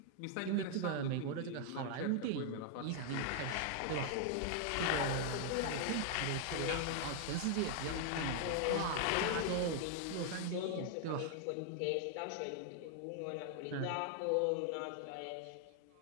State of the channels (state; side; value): different; both; correlation 0.00